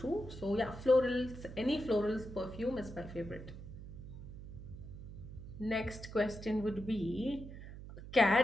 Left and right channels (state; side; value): noise; right; hum, 12 dB below the sound